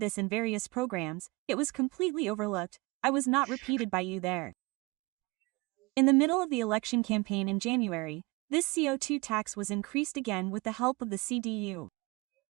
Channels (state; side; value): quieter; left; 24.8 dB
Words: in various programs, it was completely overlooked, I was not repeated by you there. In the middle of the election campaign in January, this CO2 tax was increased again with the help of the CDU.